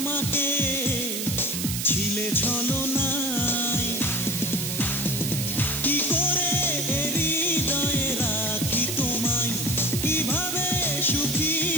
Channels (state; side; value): noise; right; hiss, 3 dB below the sound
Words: ছিলে ছলনায়। কি করে হৃদয়ে রাখি তোমায়, কিভাবে সুখী